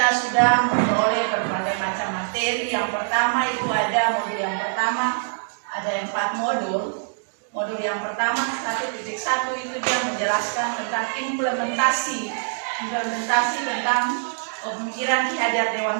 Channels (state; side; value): silent; left; digital silence